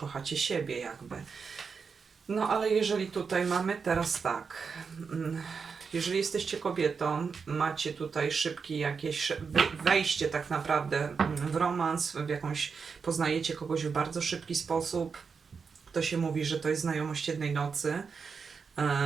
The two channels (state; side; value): quieter; left; 5.5 dB